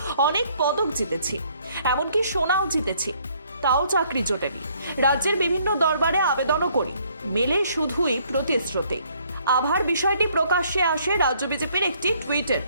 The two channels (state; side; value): inverted; both; correlation -0.64